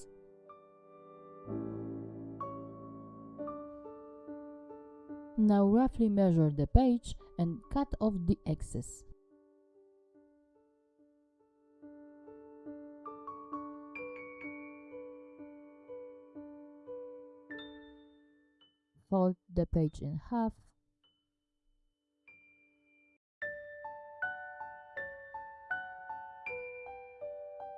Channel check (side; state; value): both; identical; correlation 1.00